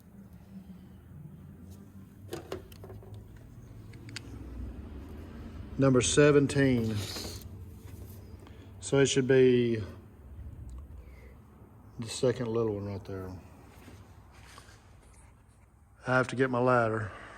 Number 17. So it should be the second little one right there. I have to get my ladder,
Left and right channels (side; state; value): both; identical; correlation 1.00